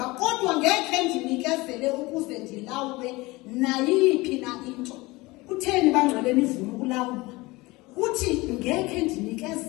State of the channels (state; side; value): quieter; right; 22.0 dB